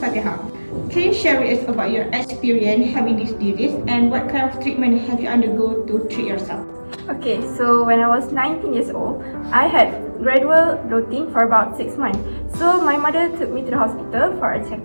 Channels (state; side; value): inverted; both; correlation -1.00